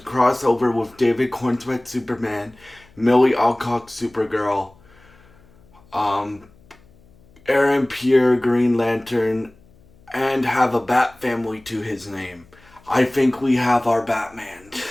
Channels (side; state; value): left; noise; hum, 28 dB below the sound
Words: over with David Cornsweet Superman, Millie Alcock Supergirl, um, Aaron Pierre Green Lantern, and have a Bat family to his name. I think we have our Batman.